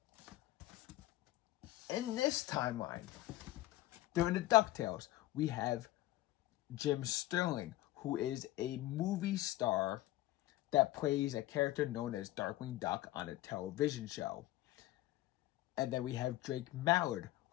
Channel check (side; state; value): right; quieter; 16.5 dB